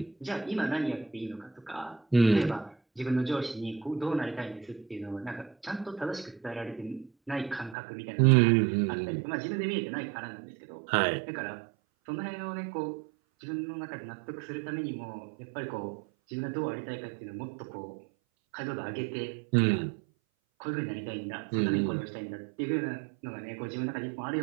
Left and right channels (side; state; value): left; drops out; at 7.8 s